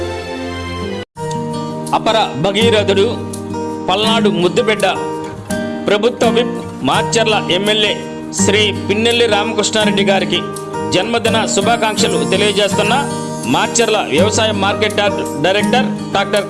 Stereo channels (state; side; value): identical; both; correlation 1.00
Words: అపర భగీరథుడు పల్నాడు ముద్దుబిడ్డ ప్రభుత్వ విప్ మాచర్ల ఎమ్మెల్యే శ్రీ పిన్నెల్లి రామకృష్ణారెడ్డి గారికి జన్మదిన శుభాకాంక్షలు తెలియజేస్తున్న మాచర్ల వ్యవసాయ market yard director doctor